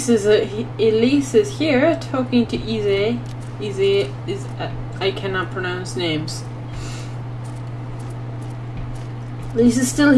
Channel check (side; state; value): both; identical; correlation 1.00